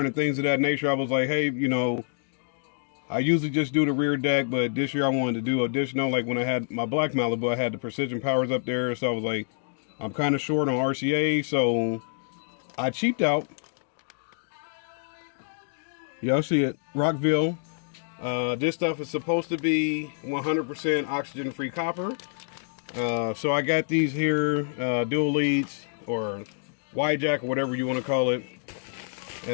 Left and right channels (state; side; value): silent; right; digital silence